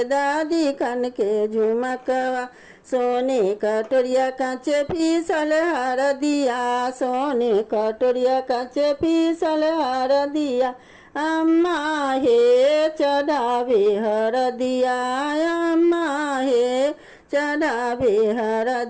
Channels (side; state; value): both; identical; correlation 1.00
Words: दादी कन के झुमकवा। सोने कटोरिया कांचे पीसल हरदिया, सोने कटोरिया कांचे पीसल हरदिया। अम्मा हे चढ़ावे हरदिया, अम्मा हे चढ़ावे